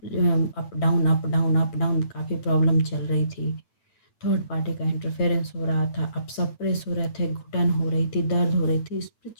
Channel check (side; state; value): right; late; 8.9 ms